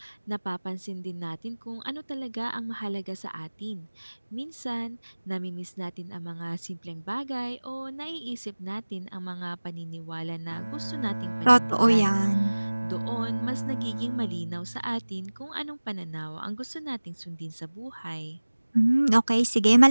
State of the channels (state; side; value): inverted; both; correlation -1.00